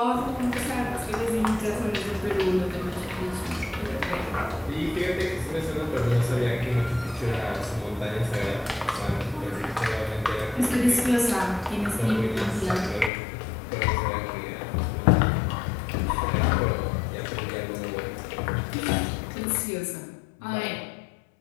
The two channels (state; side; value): drops out; right; at 13.1 s